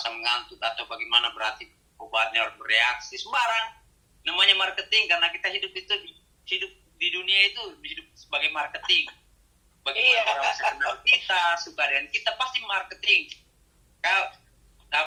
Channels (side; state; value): both; identical; correlation 1.00